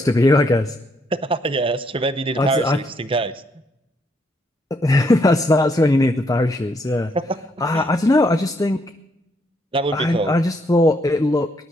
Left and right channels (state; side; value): normal; both; correlation 0.73